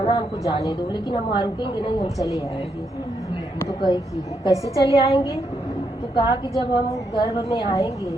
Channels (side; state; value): both; normal; correlation 0.79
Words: हमको जाने दो, लेकिन हम वहाँ रुकेंगे नहीं, हम चले आएंगे। तो कही कि कैसे चले आएंगे? तो कहा कि जब हम गर्भ में आएंगे